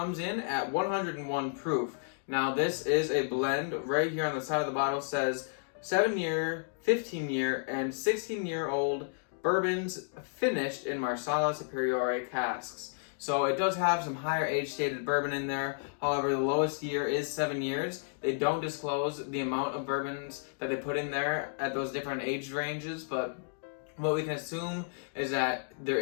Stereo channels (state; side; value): silent; right; digital silence